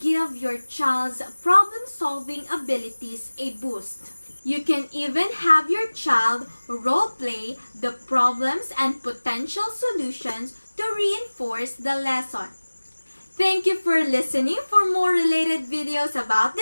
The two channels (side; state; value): both; inverted; correlation -1.00